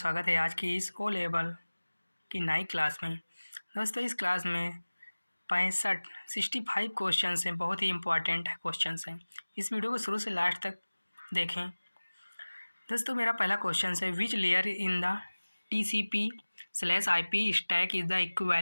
है आज की इस ओ लेवल की नई क्लास में। दोस्तों, इस क्लास में 65 क्वेश्चंस हैं, बहुत ही इम्पोर्टेंट क्वेश्चंस हैं। इस वीडियो को शुरू से लास्ट तक देखें। दोस्तों, मेरा पहला क्वेश्चन है, which layer in the TCP/IP stack is the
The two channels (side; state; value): both; inverted; correlation -1.00